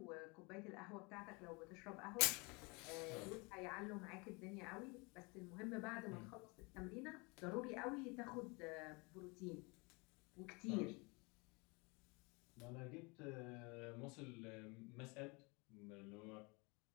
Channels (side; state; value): right; quieter; 28.7 dB